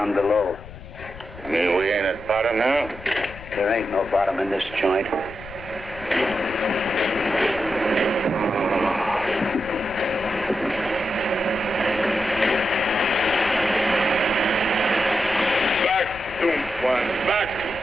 below. You mean we ain't at bottom now? There ain't no bottom in this joint. Back, doomed one. Back.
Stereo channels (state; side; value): noise; left; rumble, 16 dB below the sound